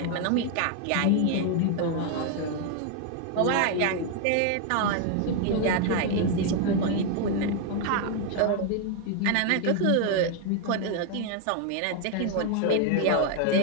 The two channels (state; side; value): different; both; correlation 0.01